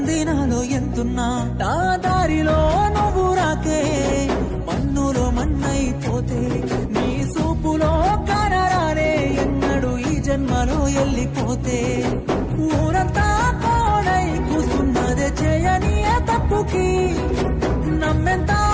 ఎంతున్నా. నా దారిలో నువ్వు రాకే మన్నులో మన్నైపోతే. నీ సూపులో కనరానే ఎన్నడు ఈ జన్మలో వెళ్ళిపోతే. ఊరంతా కోడై కూస్తున్నదే చేయని తప్పుకి. నమ్మెంత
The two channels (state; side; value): identical; both; correlation 1.00